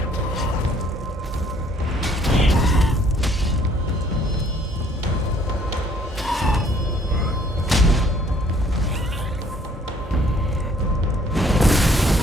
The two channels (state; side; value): normal; both; correlation 0.61